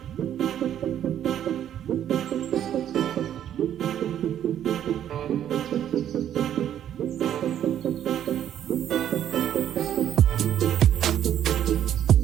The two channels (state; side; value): quieter; left; 10.5 dB